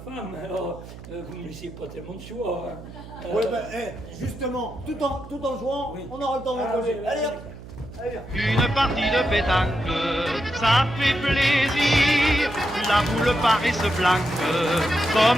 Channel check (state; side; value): noise; right; hum, 15 dB below the sound